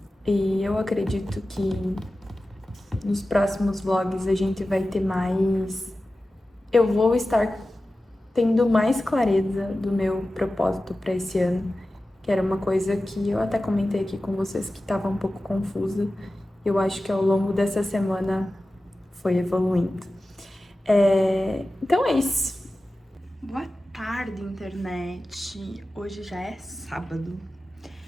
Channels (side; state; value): both; normal; correlation 0.95